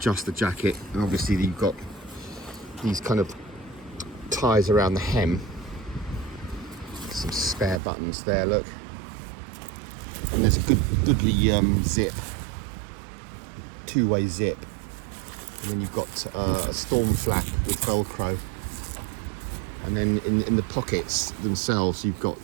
the jacket, and obviously you've got these kind of ties around the hem. Some spare buttons there, look. And there's a goodly zip, two-way zip, and then you've got a storm flap with Velcro, and then in the pockets themselves you've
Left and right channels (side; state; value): left; drops out; at 7.8 s